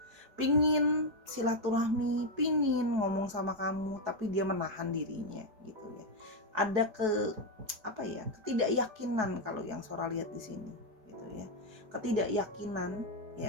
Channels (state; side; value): late; left; 4.7 ms